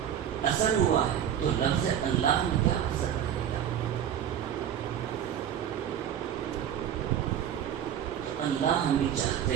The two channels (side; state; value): left; quieter; 9.6 dB